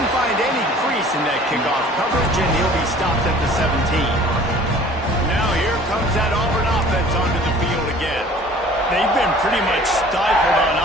find any crease in that kickoff coverage, and he'll be stopped at the 17. Now here comes that Auburn offense onto the field again. They've been pretty much stifled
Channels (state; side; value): normal; both; correlation 0.49